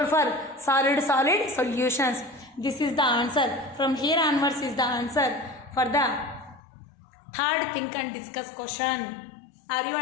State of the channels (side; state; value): right; drops out; at 6.6 s